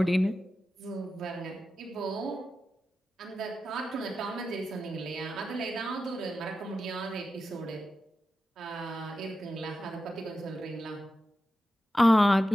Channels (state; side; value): normal; both; correlation 0.91